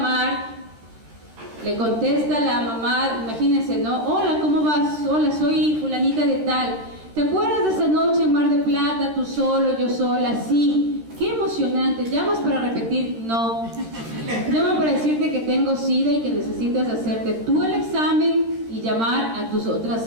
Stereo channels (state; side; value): late; left; 13 ms